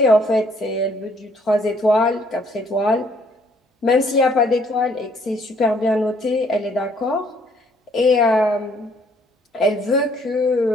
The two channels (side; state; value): both; normal; correlation 0.64